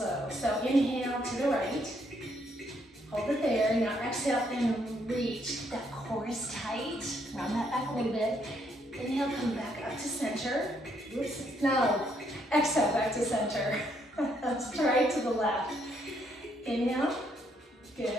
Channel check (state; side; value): normal; both; correlation 0.72